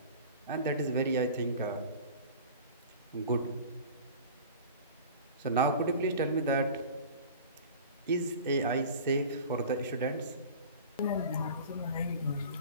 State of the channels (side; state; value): both; inverted; correlation -0.39